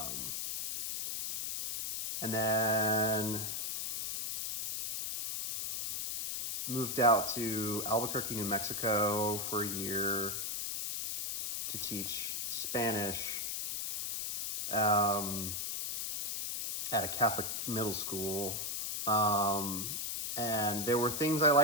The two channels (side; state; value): left; noise; hiss, 3 dB below the sound